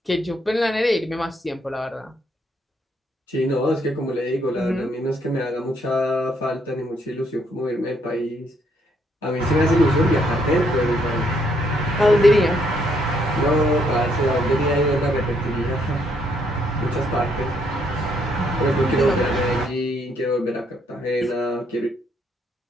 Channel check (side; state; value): both; normal; correlation 0.71